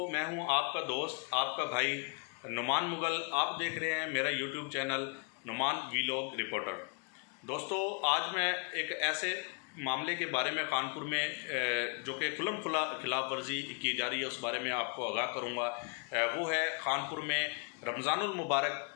मैं हूँ आपका दोस्त, आपका भाई नुमान मुगल। आप देख रहे हैं मेरा YouTube channel Numan vlog reporter. दोस्तों, आज मैं एक ऐसे मामले के बारे में कानपुर में जो कि खुल्लम खुला खिलाफ वर्जी की जा रही है उस बारे में आपको आगाह करूँगा। वो है कानपुर में रमज़ानुल मुबारक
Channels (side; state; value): right; quieter; 37.1 dB